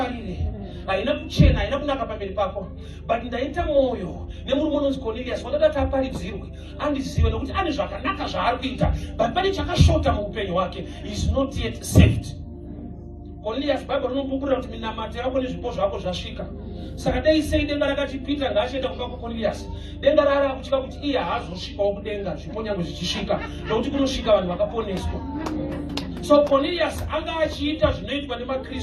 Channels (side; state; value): both; identical; correlation 1.00